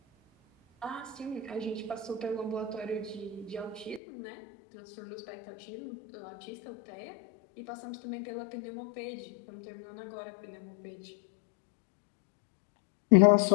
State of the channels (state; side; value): drops out; right; at 4.0 s